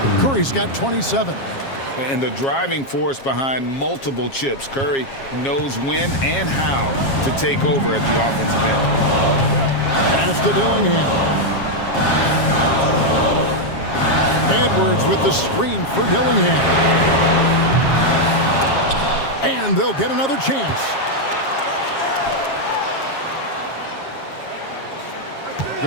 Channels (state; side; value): late; right; 7.4 ms